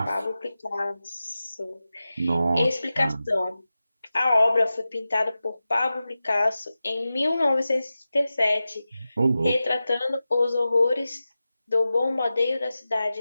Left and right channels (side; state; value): both; inverted; correlation -0.94